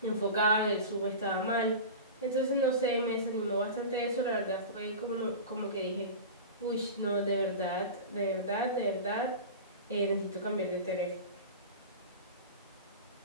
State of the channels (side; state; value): both; inverted; correlation -0.30